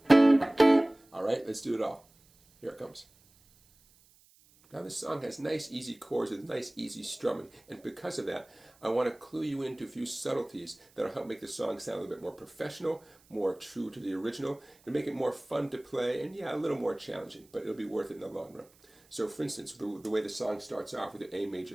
Alright, let's do it all. Here it comes. Now this song has nice easy chords with nice easy strumming, and because of that I want to clue you into a few subtleties that will help make the song sound a little bit more professional, more true to the original, and make it more fun to play, and yeah, a little more challenging, but it'll be worth it in the long run. So for instance, the way the song starts off with the A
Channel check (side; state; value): right; noise; hiss, 30 dB below the sound